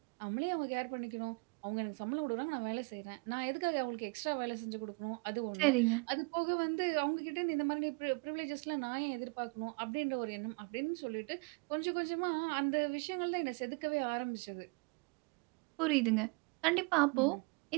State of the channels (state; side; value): quieter; left; 31.8 dB